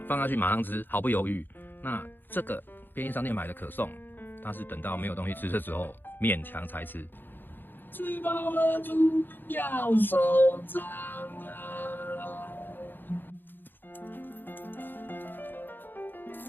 放下去马上吃，毫不犹豫。那这个便利商店买的可颂，它是等到没有东西吃的时候勉强才吃。吃饱了就要收账啊！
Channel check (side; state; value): right; late; 0.094 ms